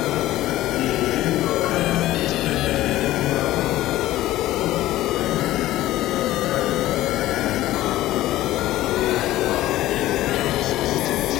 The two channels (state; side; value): quieter; right; 15.4 dB